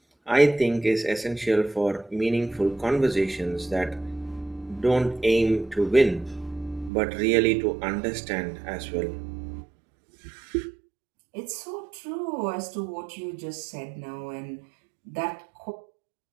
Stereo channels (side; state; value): left; drops out; at 6.9 s